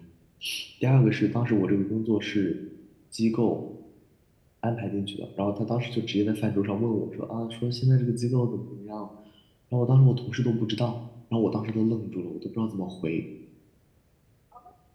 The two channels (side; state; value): both; identical; correlation 1.00